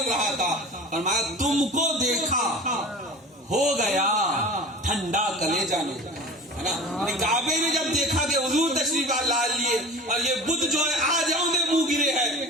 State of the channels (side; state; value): both; normal; correlation 0.36